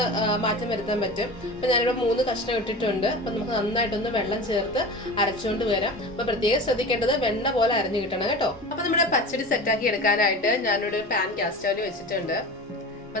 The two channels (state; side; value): normal; both; correlation 0.33